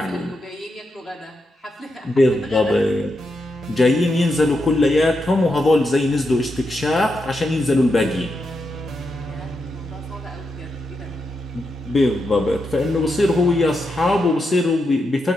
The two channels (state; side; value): normal; both; correlation 0.85